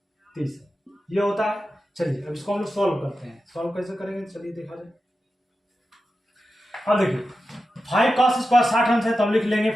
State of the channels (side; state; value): both; normal; correlation 0.91